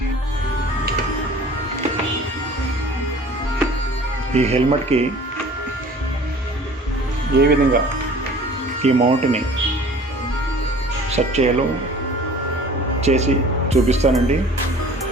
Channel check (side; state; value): both; normal; correlation 0.47